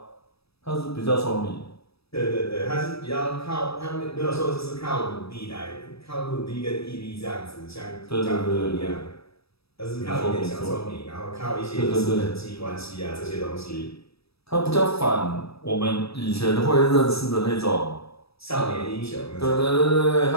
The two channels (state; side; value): late; right; 0.77 ms